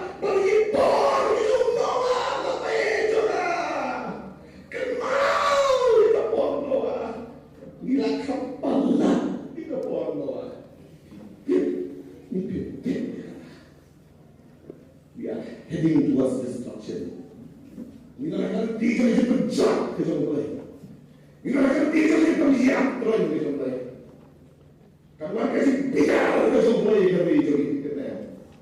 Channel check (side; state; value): both; identical; correlation 1.00